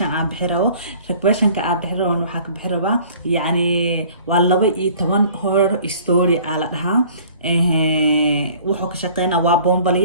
عم بحره ريكويشن كعب بحره ونحك بحره يعني والله بي تمن هور ستوري على لها wuxuu ka shaqeynaa waa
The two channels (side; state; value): both; inverted; correlation -0.51